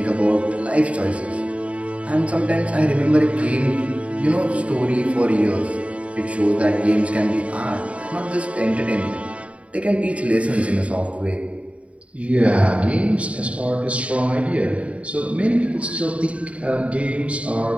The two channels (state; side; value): late; left; 0.064 ms